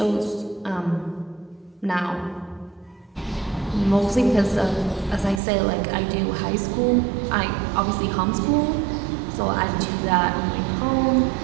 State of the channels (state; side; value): drops out; left; at 5.4 s